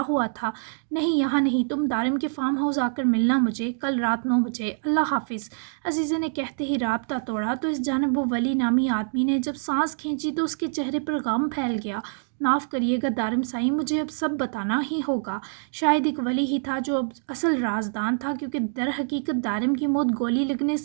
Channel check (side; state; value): left; silent; digital silence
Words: ہوا تھا۔ نہیں یہاں نہیں، تم دارم کے فارم ہاؤس آ کر ملنا مجھے، کل رات 9 بجے، اللہ حافظ۔ عزیزے نے کہتے ہی رابطہ توڑا تو اس جانب وہ ولی نامی آدمی نے جب سانس کھینچی تو اس کے چہرے پر غم پھیل گیا۔ معاف کریے گا دارم سائی، مجھے اب سب بتانا ہی ہوگا۔ شاید ایک ولی ہی تھا جو اب اصل رازدان تھا، کیونکہ در حقیقت دارم کی موت گولی لگنے